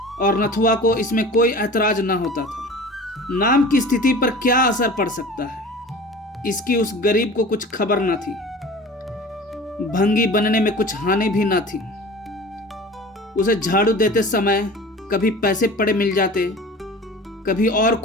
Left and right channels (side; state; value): both; normal; correlation 0.39